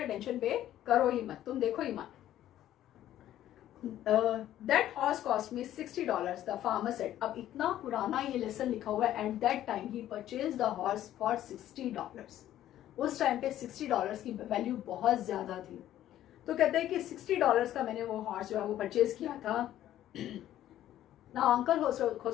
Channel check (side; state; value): right; quieter; 12.6 dB